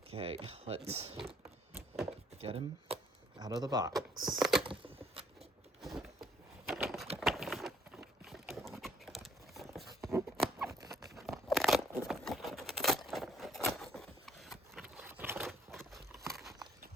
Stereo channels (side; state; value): both; normal; correlation 0.63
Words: Okay, let's get him out of the box.